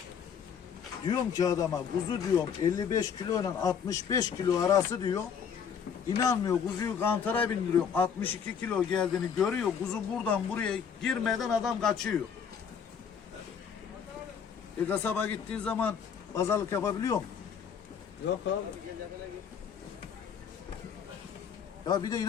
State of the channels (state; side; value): quieter; right; 7.2 dB